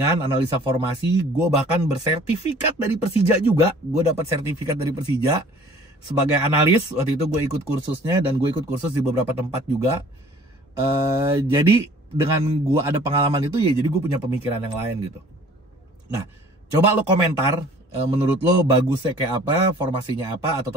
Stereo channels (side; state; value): both; normal; correlation 0.51